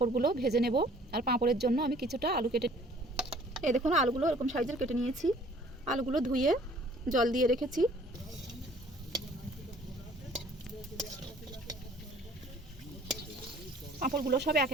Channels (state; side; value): normal; both; correlation 0.55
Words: ভেজে নেব। আর পাঁপড়ের জন্য আমি কিছুটা আলু কেটে, এই দেখুন আলুগুলো এরকম সাইজের কেটে নিয়েছি। আলুগুলো ধুয়ে জল দিয়ে রেখেছি। পাঁপড়গুলো সব একে